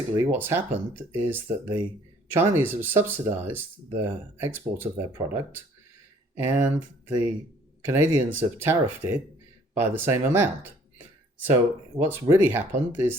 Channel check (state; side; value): normal; both; correlation 0.58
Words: what's happened is that the Chinese have subsidized the export of their product, and the Canadians have tariffed it by the same amount. So what's really happened